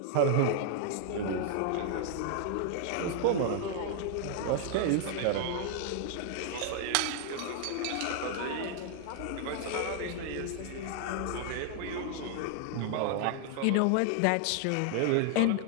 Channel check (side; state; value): both; different; correlation 0.00